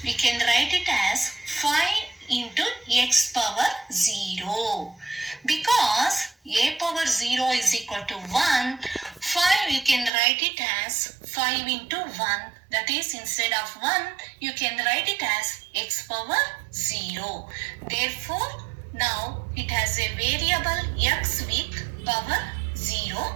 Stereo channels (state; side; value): drops out; left; at 10.1 s